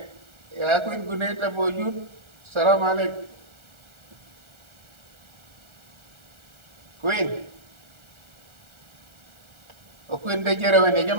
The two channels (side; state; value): left; late; 1.4 ms